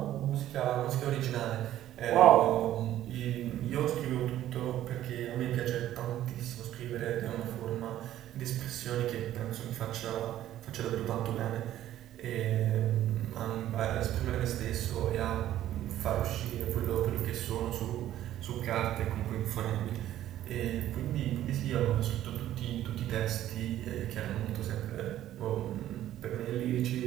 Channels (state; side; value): quieter; left; 12.8 dB